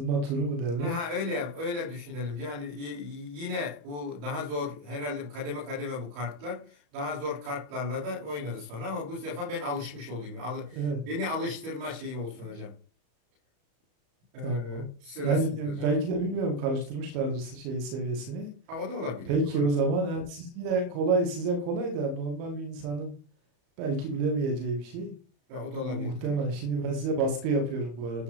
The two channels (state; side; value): late; left; 34 ms